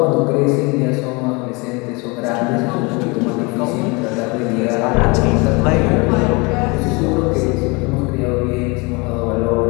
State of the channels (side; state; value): right; quieter; 27.7 dB